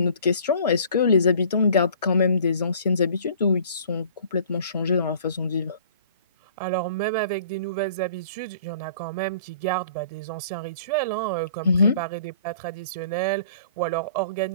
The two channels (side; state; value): both; inverted; correlation -0.51